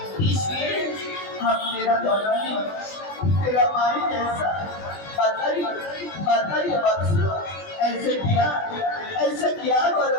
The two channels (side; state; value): right; late; 20 ms